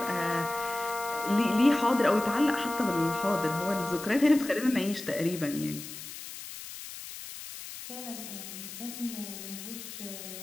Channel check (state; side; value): noise; left; hiss, 11 dB below the sound